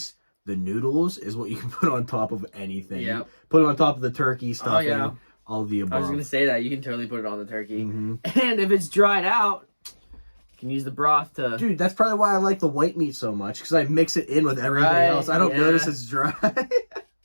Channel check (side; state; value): both; inverted; correlation -1.00